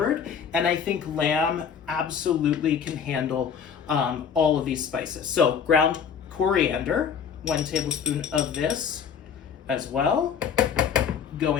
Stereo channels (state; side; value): quieter; right; 7.3 dB